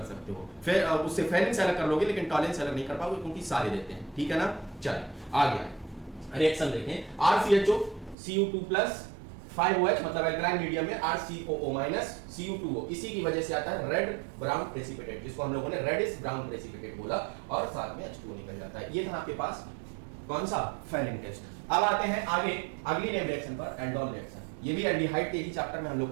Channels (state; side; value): drops out; left; at 8.2 s